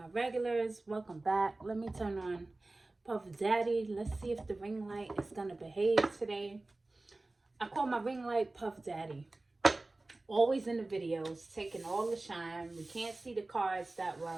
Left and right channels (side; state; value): left; quieter; 3.0 dB